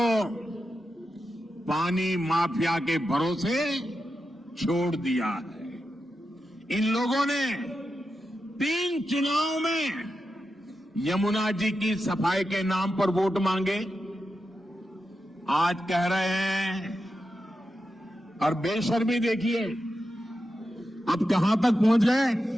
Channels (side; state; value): both; normal; correlation 0.89